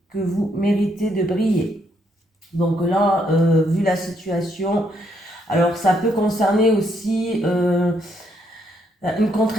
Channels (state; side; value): normal; both; correlation 0.74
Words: que vous méritez de briller. Donc là, vu la situation, alors ça peut concerner aussi une